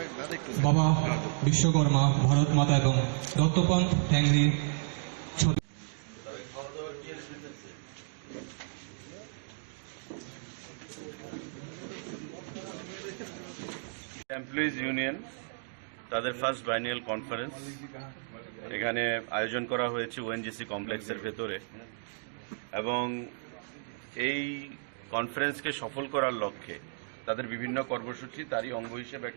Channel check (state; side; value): silent; left; digital silence